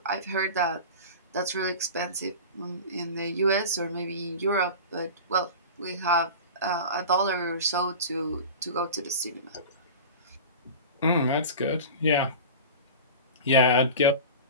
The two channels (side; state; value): both; inverted; correlation -0.32